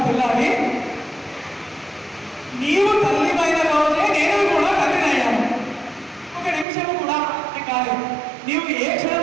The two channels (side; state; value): left; drops out; at 6.7 s